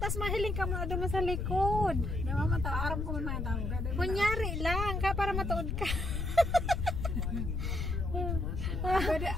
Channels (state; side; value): noise; left; rumble, 1 dB below the sound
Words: mahiling ka mo doon sa likod. Dawa man ta, aram ko man tawag. Kunyari lang, para matuod ka.